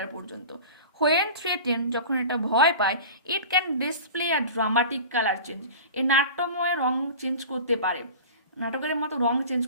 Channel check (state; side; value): inverted; both; correlation -0.36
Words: পর্যন্ত। হোয়েন থ্রেটেন, যখন এটা ভয় পায়, it can display a dramatic colour change, এই নাট্যময় রং চেঞ্জ করতে পারে। নাটকের মতো রং চেঞ্জ